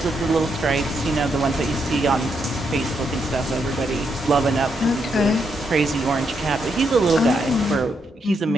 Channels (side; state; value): both; normal; correlation 0.79